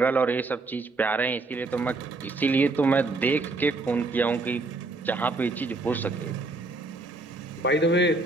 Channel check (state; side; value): quieter; left; 3.2 dB